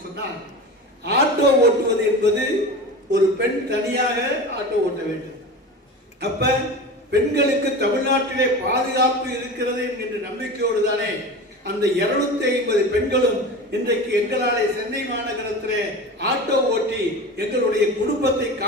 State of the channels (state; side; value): normal; both; correlation 0.30